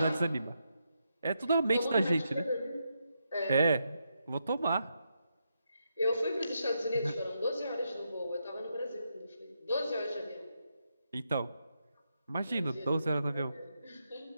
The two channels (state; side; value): inverted; both; correlation -0.82